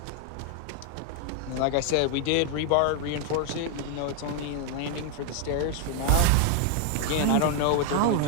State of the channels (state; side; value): different; both; correlation 0.01